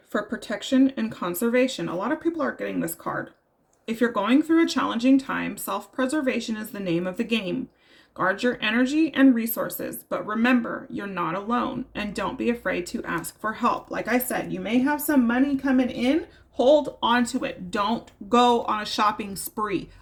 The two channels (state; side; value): identical; both; correlation 1.00